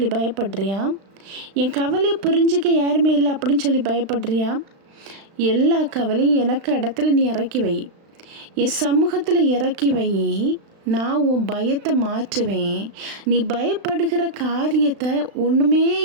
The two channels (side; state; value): left; late; 36 ms